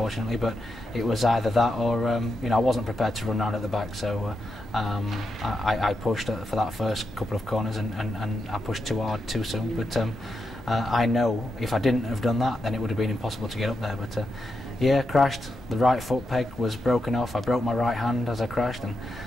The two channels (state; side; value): normal; both; correlation 0.85